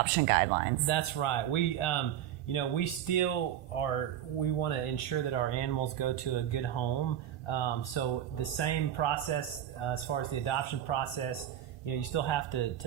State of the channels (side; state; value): left; quieter; 10.8 dB